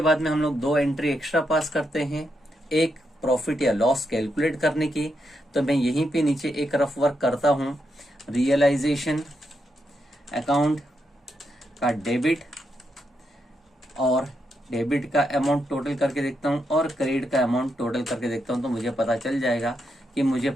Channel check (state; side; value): normal; both; correlation 0.82